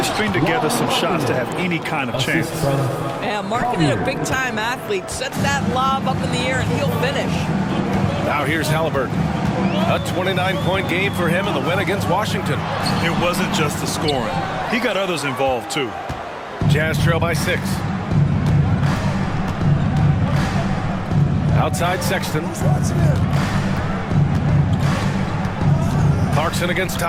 string together some shots to have any kind of chance. Yeah, Markkanen, a big-time athlete. Set that lob up in the air and he'll finish. Now here's Halliburton. A 29-point game for him in the win against Washington. It wasn't just the scoring. He got others involved, too. Jazz trail by 6. Outside Sexton. Clarkson against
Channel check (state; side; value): identical; both; correlation 1.00